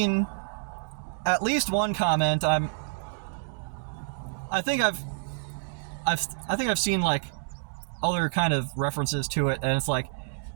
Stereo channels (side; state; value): left; silent; digital silence